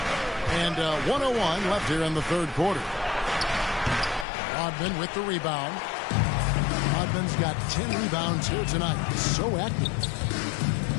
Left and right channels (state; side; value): drops out; right; at 4.2 s